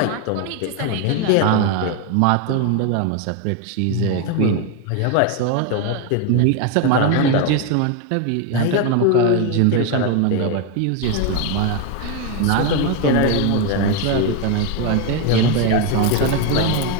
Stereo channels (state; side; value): different; both; correlation 0.01